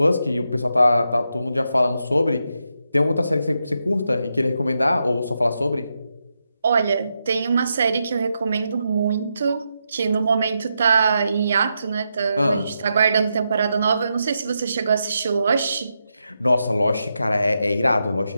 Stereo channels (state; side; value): inverted; both; correlation -0.85